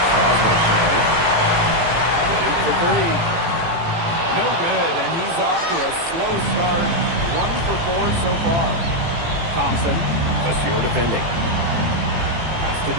Strasburg trying. In for 3. No good, and he's off to a slow start. 1 for 4 so far. Thompson, Monsieur defending. Pass to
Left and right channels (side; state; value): left; late; 18 ms